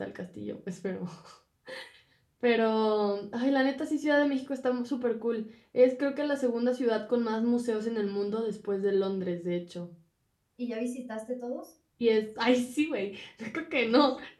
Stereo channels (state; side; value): identical; both; correlation 1.00